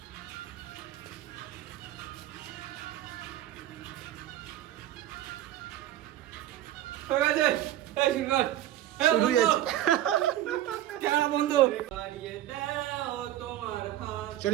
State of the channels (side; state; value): left; quieter; 13.1 dB